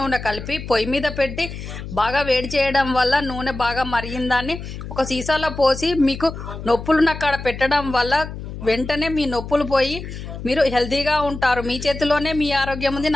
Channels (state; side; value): noise; left; hum, 9 dB below the sound